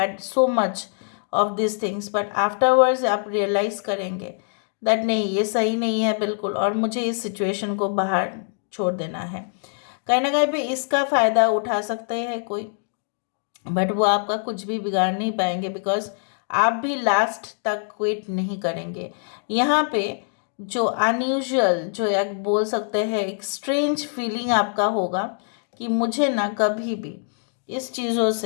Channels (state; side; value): silent; right; digital silence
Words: so much of these things, but afterwards आप realize करेंगे that नहीं, ये सही नहीं है बिल्कुल, और मुझे इस situation को बाहर छोड़ देना है। कहीं ना कहीं पे इसका फ़ायदा उठा सकते हैं कोई, बट वो आपका कुछ भी बिगाड़ नहीं पाएंगे, बिकॉज आप भी लास्ट तक क्विट नहीं करेंगे। यहाँ पे जो अनयूजुअल, जो एक बोल सकते हैं एक स्ट्रेंज फीलिंग आपका होगा कि मुझे ना कभी भी इस चीज़ों से,